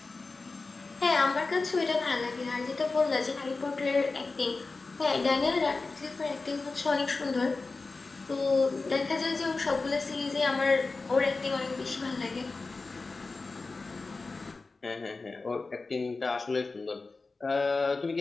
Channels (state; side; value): quieter; right; 3.8 dB